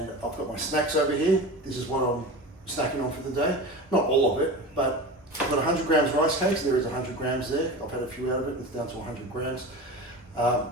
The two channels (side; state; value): both; normal; correlation 0.30